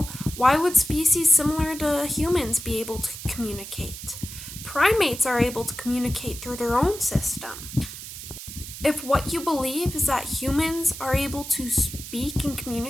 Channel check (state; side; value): noise; right; hiss, 11 dB below the sound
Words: why would species similar to humans be able to communicate? Primates are able to communicate through their own system. If what you believe is that humans are able to speak and